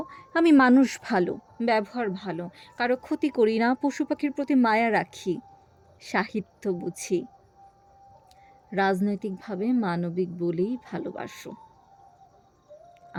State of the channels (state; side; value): identical; both; correlation 1.00